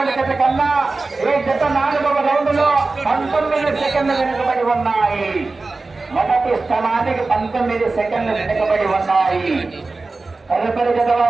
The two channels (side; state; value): left; quieter; 3.6 dB